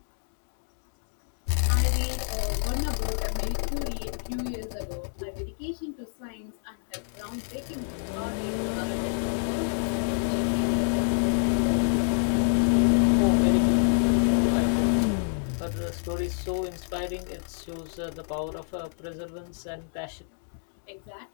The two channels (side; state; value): right; silent; digital silence